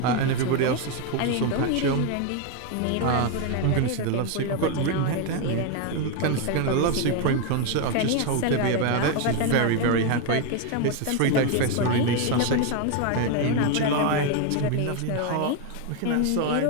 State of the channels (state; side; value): different; both; correlation 0.01